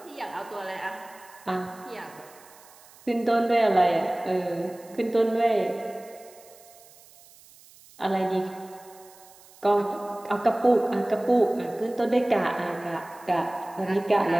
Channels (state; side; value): noise; right; hiss, 24 dB below the sound